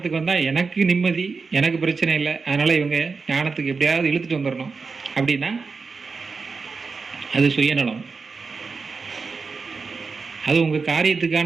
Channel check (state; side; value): quieter; left; 4.7 dB